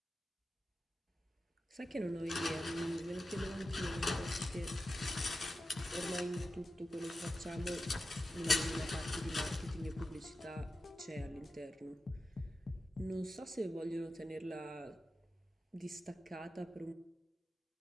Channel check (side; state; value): both; normal; correlation 0.91